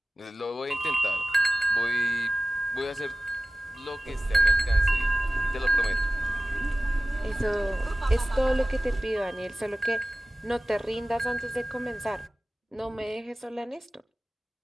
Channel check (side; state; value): both; normal; correlation 0.95